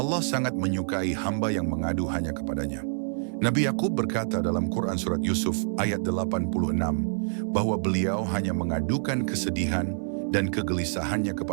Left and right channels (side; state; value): left; silent; 60 dB below the other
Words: sangat menyukai hamba yang mengadu hanya kepadanya. Nabi Yakub berkata dalam Quran Surat Yusuf ayat 86 bahwa beliau hanya mengadukan kesedihan dan kegelisahannya